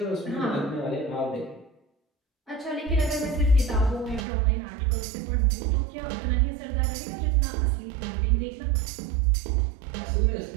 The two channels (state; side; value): drops out; left; at 4.2 s